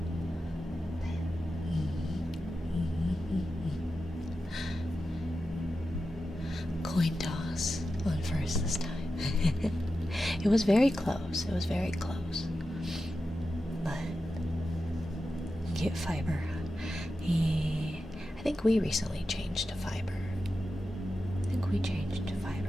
Coin toss on first this time. It was very close. It was very close. But get fiber. Yeah. I think we recently changed to fiber. I think we changed to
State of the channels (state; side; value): normal; both; correlation 0.91